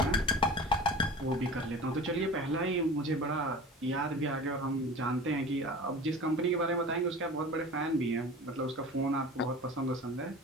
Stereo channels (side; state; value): both; normal; correlation 0.37